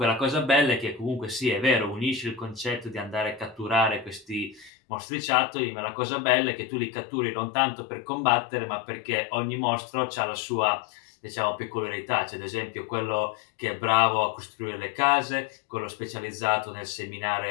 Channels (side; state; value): right; drops out; at 4.7 s